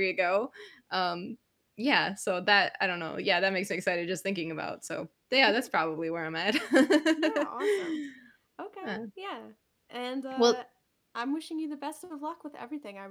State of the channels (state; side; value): identical; both; correlation 1.00